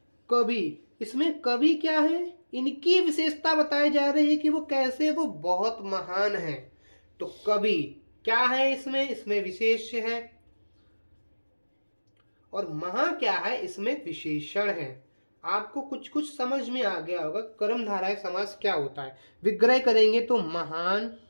इसमें कवि क्या है, इनकी विशेषता बताई जा रही है कि वो कैसे, वो बहुत महान है। तो कवि क्या है, इसमें विशेष है। और महा क्या है, इसमें विशेषण है। आपको कुछ कुछ समझ में आ गया होगा कर्मधारय समास क्या होता है। विग्रह करेंगे तो महान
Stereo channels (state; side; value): inverted; both; correlation -1.00